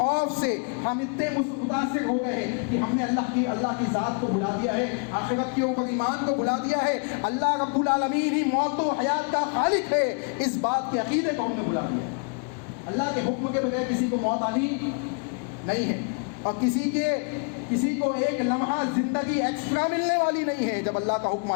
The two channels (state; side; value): quieter; right; 39.0 dB